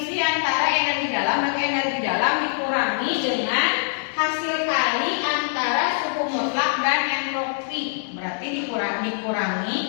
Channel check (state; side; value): silent; right; 63 dB below the other